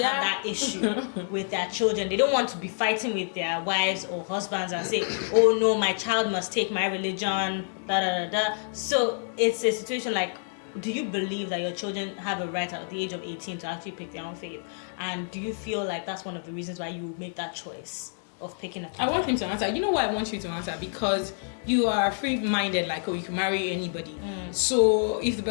have that issue with their children. They don't want to be fighting with their wives or husbands and say, oh no, my child must take my religion, da da da da. So it's a situation like, do you believe that your children have a right at the age of 18 to actually pick their own faith? And do you feel like that's one of the reasons why you make that choice of picking a path? I want him to answer. You know why I want you to answer? Because you are free-minded, like, oh, you can marry anybody. So if the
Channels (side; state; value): right; silent; digital silence